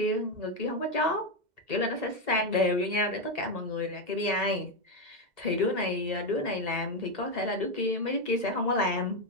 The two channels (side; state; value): left; late; 2.0 ms